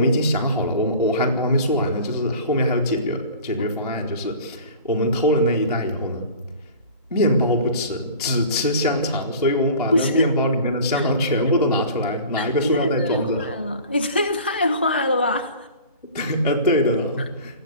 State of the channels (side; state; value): both; inverted; correlation -0.42